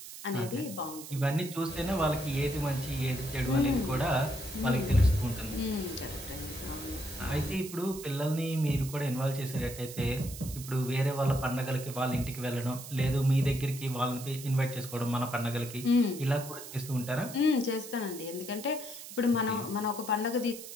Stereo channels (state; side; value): noise; right; hiss, 12 dB below the sound